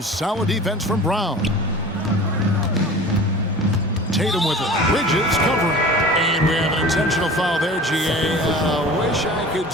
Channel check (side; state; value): both; normal; correlation 0.40